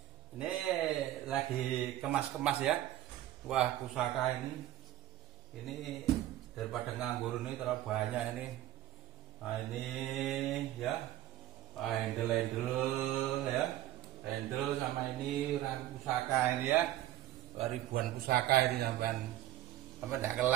ini lagi kemas-kemas ya. Wah, pusaka ini daripada nganggur ini terlalu banyak ini. Nah, ini ya, handle ya, handle sama ini pusaka ini ya, ribuan pusaka ini sampai tidak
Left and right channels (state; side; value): quieter; left; 13.6 dB